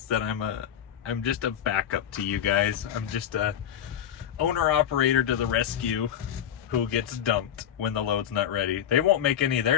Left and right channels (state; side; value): quieter; right; 10.0 dB